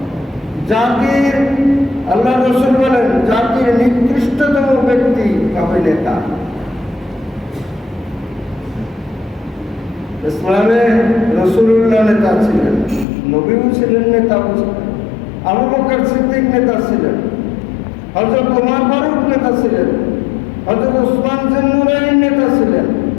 জাতির, আল্লাহ রসুল বলেন জাতির নিকৃষ্টতম ব্যক্তি হবে নেতা। ইসলামে রসুলুল্লাহ নেতা ছিলেন, নবীও ছিলেন, নেতাও ছিলেন। আবু বকর সিদ্দিক নেতা ছিলেন, হযরত ওমর ফারুক নেতা ছিলেন, হযরত উসমান জিন্নুরাইন নেতা ছিলেন,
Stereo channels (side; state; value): right; drops out; at 13.1 s